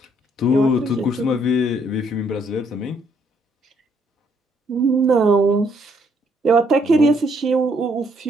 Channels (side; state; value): both; normal; correlation 0.69